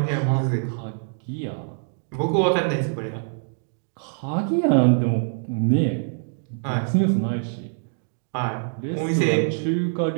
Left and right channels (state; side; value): silent; left; digital silence